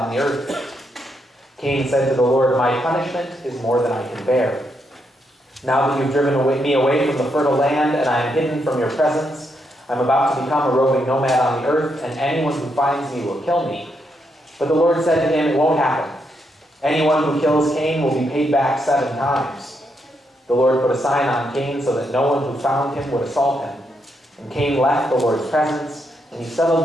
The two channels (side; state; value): both; normal; correlation 0.79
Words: the earth. Cain said to the Lord, My punishment is more than I can bear. Now that you've driven me away from the fertile land, and I am hidden from your presence, I'm about to become a roving nomad on the earth, and anyone who finds me will kill me. But the Lord said to him, It won't happen. Anyone who kills Cain will be paid back 7 times. The Lord put a sign on Cain so that no one who found him would assault him. And Cain left the Lord's presence, and he settled